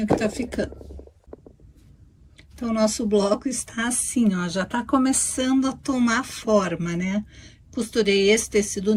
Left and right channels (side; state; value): both; identical; correlation 1.00